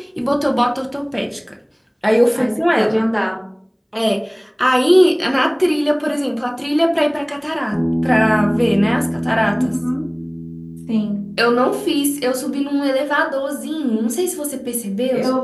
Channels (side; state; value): both; identical; correlation 1.00